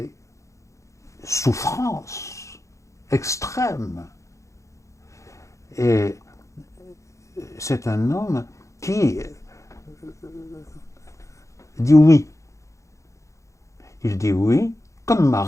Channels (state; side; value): late; right; 0.15 ms